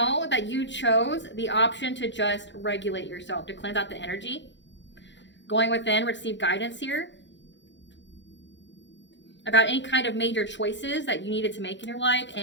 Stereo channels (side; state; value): right; late; 0.53 ms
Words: that you chose the option to just regulate yourself, to cleanse out the energy. Going within, receive guidance here about any kind of major choices that you needed to make in your life.